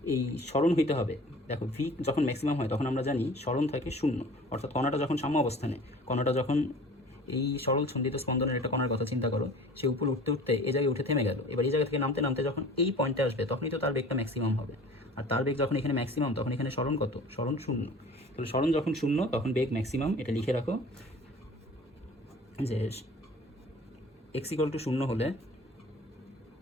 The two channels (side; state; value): both; normal; correlation 0.44